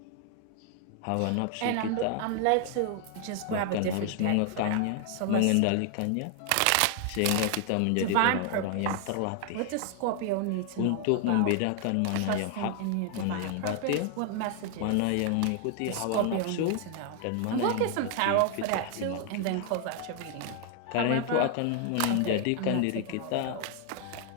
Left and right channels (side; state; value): both; different; correlation 0.00